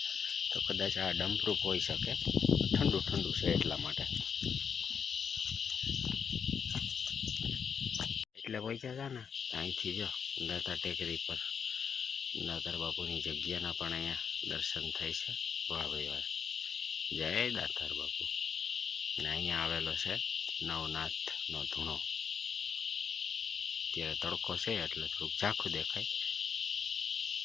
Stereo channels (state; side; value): quieter; right; 6.9 dB